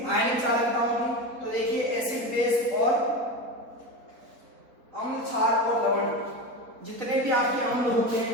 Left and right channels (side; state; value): left; late; 4.0 ms